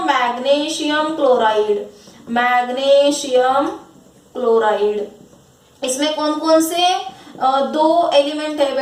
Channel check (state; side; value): identical; both; correlation 1.00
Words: मैग्नीशियम क्लोराइड। मैग्नीशियम क्लोराइड, इसमें कौन कौन से दो एलिमेंट है